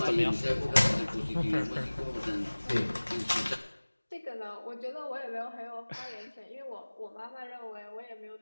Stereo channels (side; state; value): both; inverted; correlation -1.00